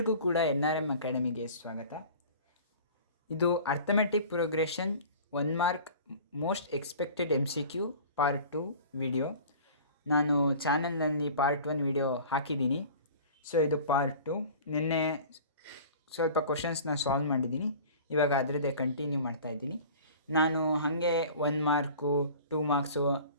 ಕೂಡ NRM ಅಕಾಡೆಮಿಗೆ ಸ್ವಾಗತ. ಇದು arithmetic progression 1 mark most expected MCQ part 2 video. ನಾನು ಚಾನಲ್ನಲ್ಲಿ ಪಾರ್ಟ್ 1 ವಿಡಿಯೋ ಹಾಕಿದ್ದೀನಿ. ಸೊ ಇದು ಪಾರ್ಟ್ 2. ನಿನ್ನೆ ಸ್ವಲ್ಪ ಕ್ವಶನ್ಸ್ನ ಸಾಲ್ವ್ ಮಾಡಿದ್ದೀನಿ, ಇವಾಗ ಅದರದ್ದೇ ಕಂಟಿನ್ಯೂ ಮಾಡ್ತಾಯಿದ್ದೀನಿ. ನಾನು ಹಾಗೆ 1 ಮಾರ್ಕು 2 ಮಾರ್ಕ್ಸು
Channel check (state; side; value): inverted; both; correlation -0.42